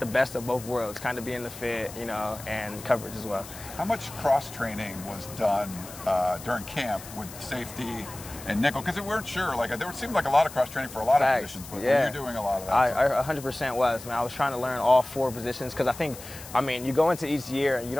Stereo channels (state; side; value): noise; left; hiss, 15 dB below the sound